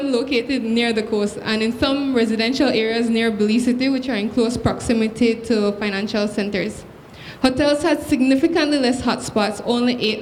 located near the coast and in some residential areas near Belize City, which are in close proximity to financial centers. Hotels had significantly less hotspots, only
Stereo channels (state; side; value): identical; both; correlation 1.00